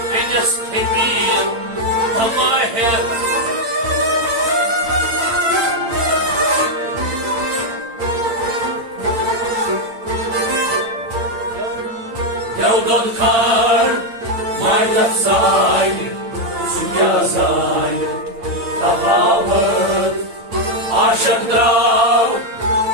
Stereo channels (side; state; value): left; late; 8.8 ms